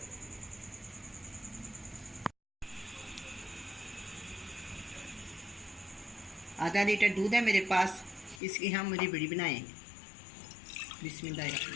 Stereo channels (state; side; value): drops out; right; at 8.4 s